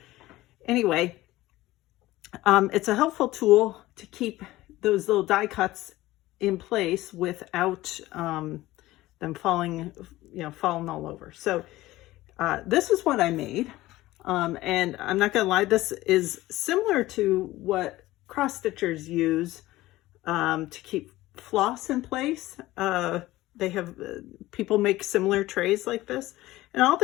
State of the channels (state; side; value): quieter; right; 17.3 dB